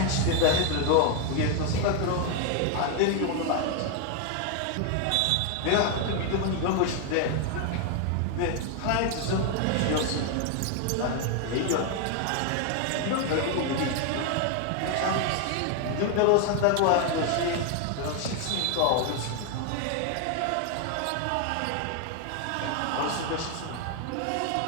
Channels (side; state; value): both; different; correlation 0.01